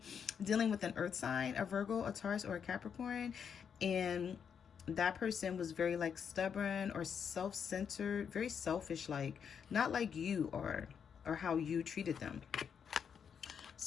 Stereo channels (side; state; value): right; quieter; 7.3 dB